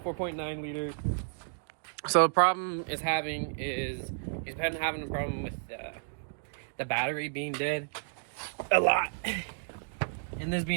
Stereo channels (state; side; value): silent; left; digital silence